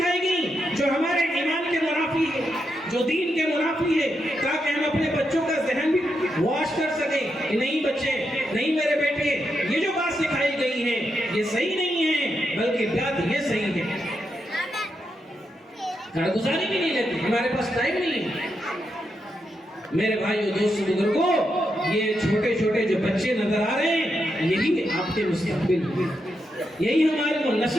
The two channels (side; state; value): both; normal; correlation 0.84